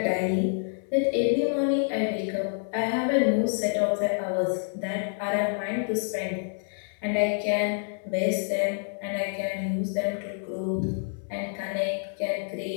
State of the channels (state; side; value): silent; right; 60 dB below the other